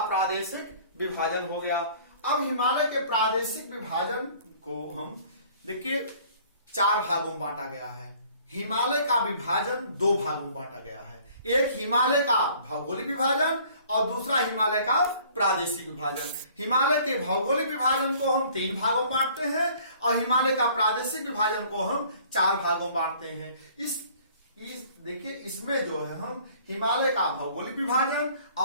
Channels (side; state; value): both; inverted; correlation -0.54